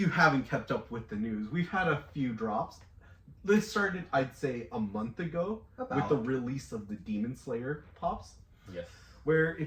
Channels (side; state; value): both; identical; correlation 1.00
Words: haven't kept up with the news, we've had a few drops. This started, I'd say, a month ago with the release of the Demon Slayer pops. Yes. Where,